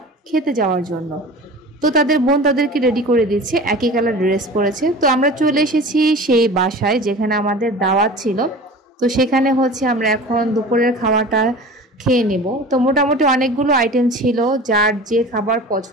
খেতে যাওয়ার জন্য। তো তাদের বোন তাদেরকে রেডি করে দিচ্ছে, একই কালার ড্রেস পরেছে। তো আমরা চলে এসেছি সেই বাসায় যেখানে আমাদের দাওয়াত ছিল। তো সেখানে হচ্ছে আমরা এখন দুপুরের খাওয়াটা খেয়ে নেব। তো মোটামুটি অনেকগুলো আইটেম ছিল, যার যে খাবার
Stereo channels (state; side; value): normal; both; correlation 0.38